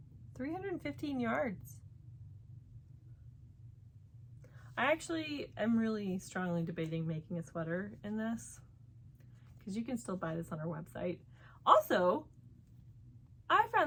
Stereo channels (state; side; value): identical; both; correlation 1.00